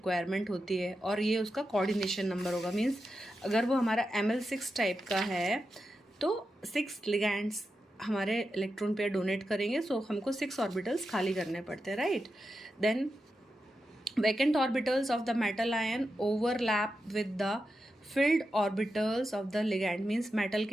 होती है, और ये उसका कोऑर्डिनेशन नंबर होगा. मींस अगर वो हमारा ML6 टाइप का है तो 6 लिगैंड्स हमारे इलेक्ट्रॉन पेयर डोनेट करेंगे, सो हमको 6 ऑर्बिटल्स खाली करने पड़ते हैं, right. Then vacant orbitals of the metal ion overlap with the filled orbitals of the ligand. Means metal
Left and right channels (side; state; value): both; normal; correlation 0.89